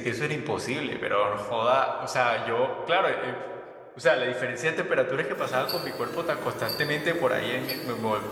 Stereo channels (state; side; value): identical; both; correlation 1.00